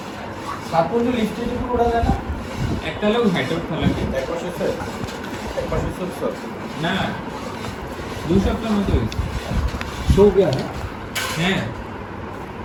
সাত পর্যন্ত লিফটে যদি ওঠা যায় না একটা লোক হাইট আউট খেলা না 2 সপ্তাহের মতো হয়েছে শো গয়া হ্যাঁ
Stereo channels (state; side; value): identical; both; correlation 1.00